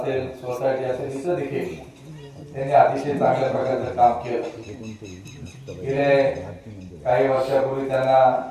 सोसायटी असेल, इथं देखील त्यांनी अतिशय चांगल्या प्रकारचं काम केलं. गेले काही वर्षापूर्वी त्यांना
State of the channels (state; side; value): identical; both; correlation 1.00